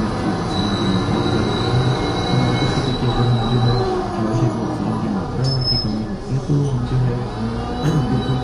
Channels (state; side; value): identical; both; correlation 1.00